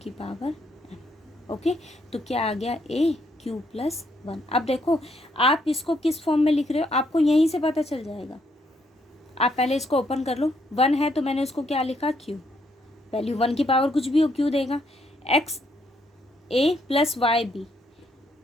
पावर m। ओके, तो क्या आ गया, a क्यू प्लस 1। अब देखो आप इसको किस फॉर्म में लिख रहे हो, आपको यहीं से पता चल जाएगा। आप पहले इसको ओपन कर लो, 1 है तो मैंने उसको क्या लिखा, क्यू, वैल्यू 1 की पावर कुछ भी हो क्यू देगा, एक्स ए प्लस वाई बी,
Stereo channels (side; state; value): both; normal; correlation 0.73